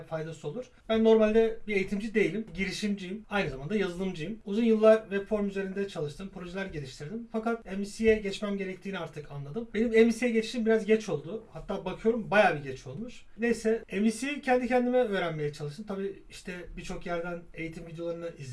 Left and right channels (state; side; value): identical; both; correlation 1.00